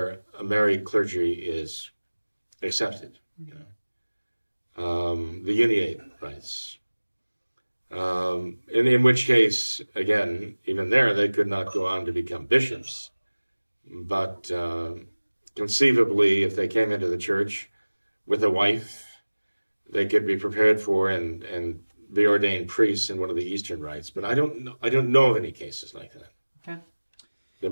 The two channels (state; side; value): inverted; both; correlation -1.00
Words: a married clergy is accepted, you know, the uniate rites. In which case, again, even there, they could not go on to become bishops. But conceivably, if they came into the church with a wife, they could be prepared for and be ordained priests in one of the Eastern rites. But I don't know of any cases like that. Okay. There